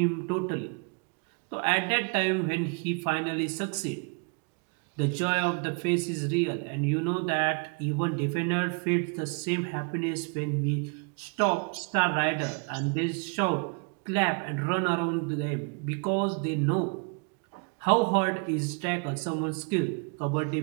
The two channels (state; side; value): quieter; left; 36.3 dB